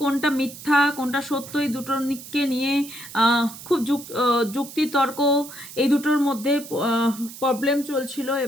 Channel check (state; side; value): noise; right; hiss, 14 dB below the sound